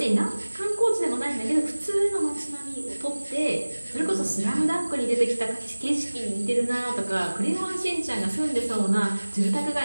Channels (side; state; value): both; inverted; correlation -1.00